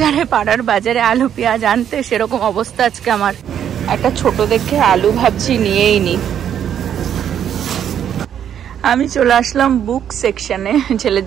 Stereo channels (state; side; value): quieter; left; 9.4 dB